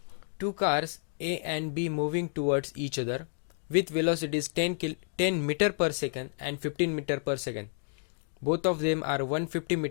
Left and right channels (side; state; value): right; silent; digital silence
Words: Two cars A and B moving towards each other with velocities 10 meter per second and 15 meter per second. Both of them are 150